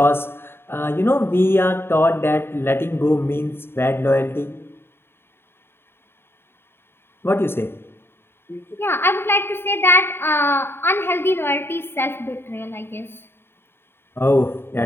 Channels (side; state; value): right; late; 0.11 ms